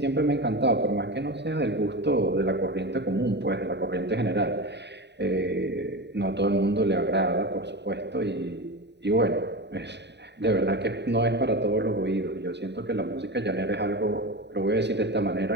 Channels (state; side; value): late; left; 0.50 ms